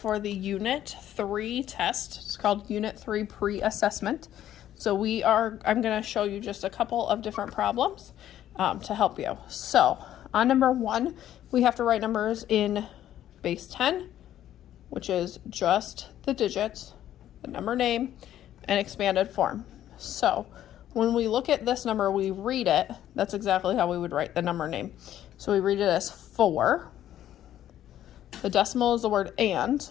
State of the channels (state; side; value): quieter; right; 11.8 dB